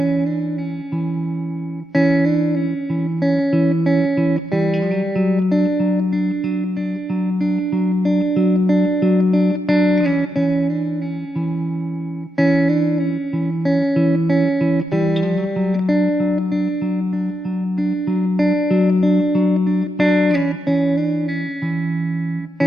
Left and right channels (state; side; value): normal; both; correlation 0.86